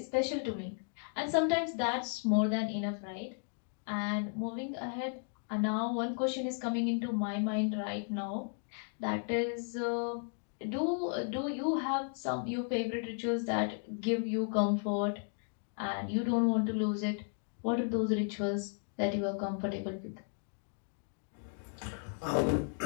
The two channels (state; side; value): silent; right; 55 dB below the other